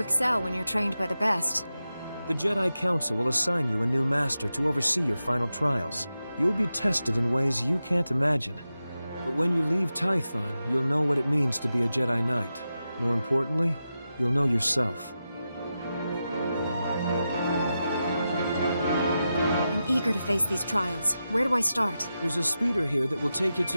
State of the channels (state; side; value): inverted; both; correlation -0.90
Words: when you're trained by the best. The Jedi Council will assign you a new master to oversee your final trials. You'll be tested in ways you can't imagine. But when you leave Tython, you'll know what it means to be a Jedi Knight. More importantly, you'll know yourself. I'm eager to face these trials. Where do I start? There's a speeder here that will take you